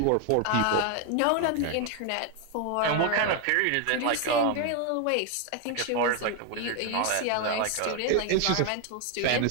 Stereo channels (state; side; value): different; both; correlation 0.01